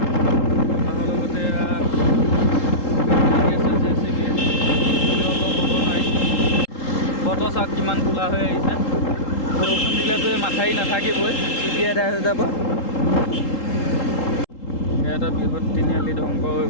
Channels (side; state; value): right; late; 3.8 ms